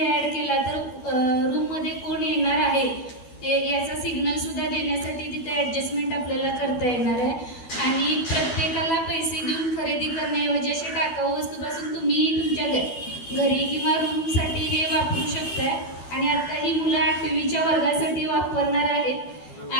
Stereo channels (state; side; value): late; right; 12 ms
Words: ॲड केला तर रूममध्ये कोण येणार आहे ते याचा सिग्नल सुद्धा देण्यासाठी तिथे ॲडजस्टमेंट आपल्याला करता येणार आहे. आणि प्रत्येकाला पैसे देऊन खरेदी करण्याऐवजी अशा टाकाऊ वस्तूपासून तुम्ही तुमच्या घरी किंवा रूमसाठी हे वापरू शकताय. आणि आता ही मुलं 8वीच्या वर्गासाठी वापरणार आहेत